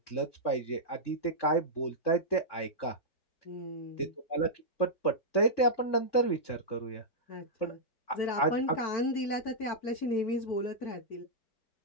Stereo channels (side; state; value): right; late; 4.5 ms